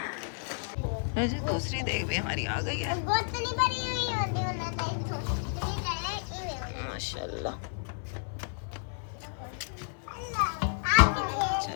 जी दूसरी देग भी हमारी आ गई है माशाल्लाह।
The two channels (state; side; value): silent; right; 57 dB below the other